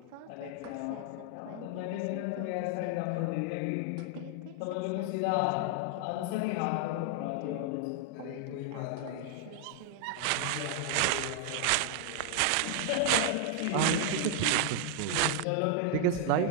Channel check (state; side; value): different; both; correlation 0.00